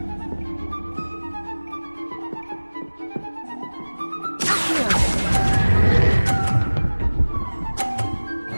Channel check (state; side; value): inverted; both; correlation -1.00